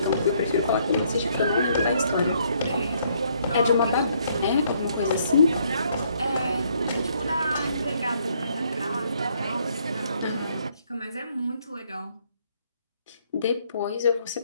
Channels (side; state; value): both; inverted; correlation -0.68